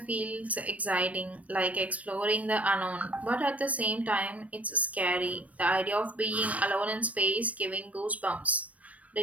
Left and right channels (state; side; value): late; left; 0.068 ms